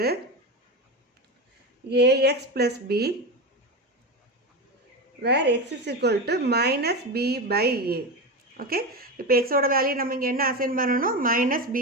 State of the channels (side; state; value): both; normal; correlation 0.19